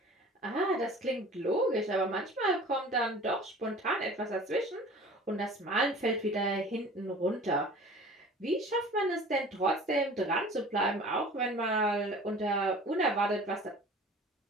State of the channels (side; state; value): both; normal; correlation 0.43